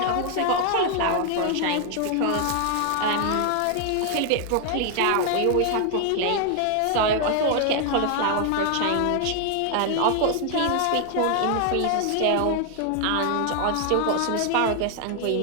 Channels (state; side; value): different; both; correlation 0.00